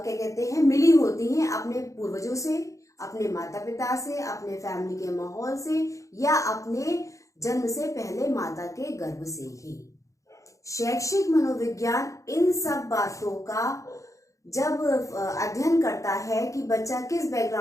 कहते हैं, मिली होती हैं अपने पूर्वजों से, अपने माता पिता से, अपने फैमिली के माहौल से या अपने जन्म से पहले माता के गर्भ से ही। शैक्षिक मनोविज्ञान इन सब बातों का जब अध्ययन करता है कि बच्चा किस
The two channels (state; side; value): late; right; 0.15 ms